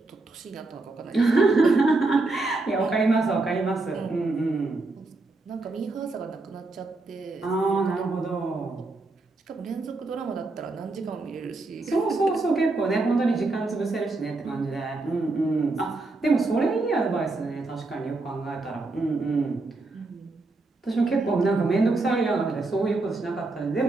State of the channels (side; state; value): left; quieter; 3.3 dB